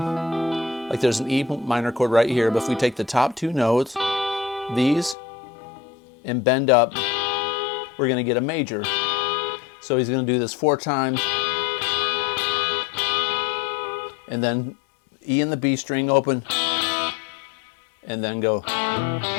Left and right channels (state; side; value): drops out; right; at 5.2 s